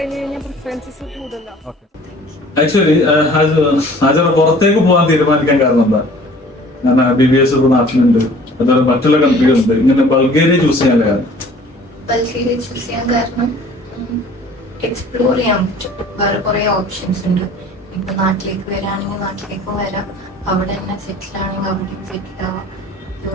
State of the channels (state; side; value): normal; both; correlation 0.50